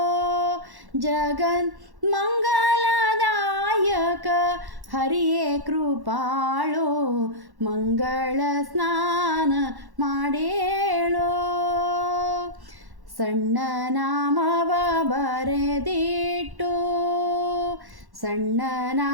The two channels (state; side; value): late; left; 1.1 ms